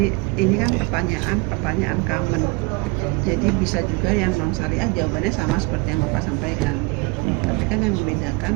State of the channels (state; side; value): quieter; left; 27.4 dB